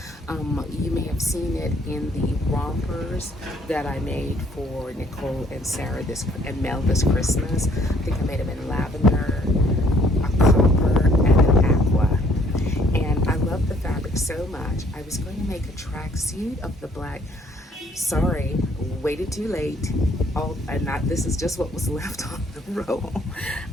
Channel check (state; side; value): normal; both; correlation 0.63